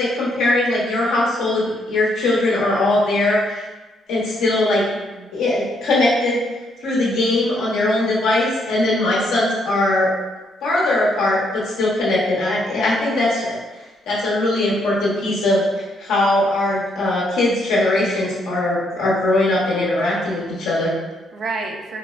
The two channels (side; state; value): both; normal; correlation 0.73